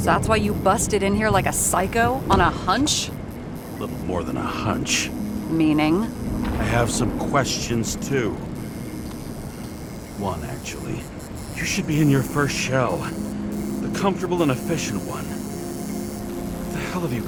that's why you busted in here like a psycho on a hunch? A little more than a hunch. Meaning? I have some questions too. One, actually. You should be in your first shell. The comfortable and efficient one. What the hell have you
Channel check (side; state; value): both; identical; correlation 1.00